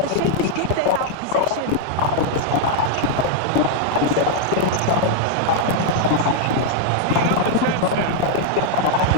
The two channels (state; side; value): different; both; correlation 0.00